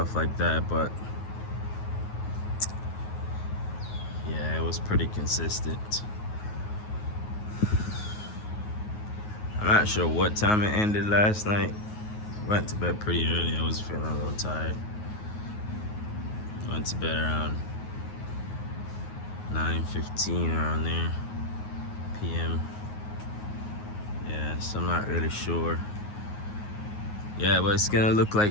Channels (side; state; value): right; late; 9.4 ms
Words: like that, but yeah, it was pretty consistent. I'm not sure what time it ended last night. Went to bed pretty early. I was feeling a little tired. Went to bed around 9:15 around there p.m. Yeah, so I'm not really sure. Yeah, but it's gonna look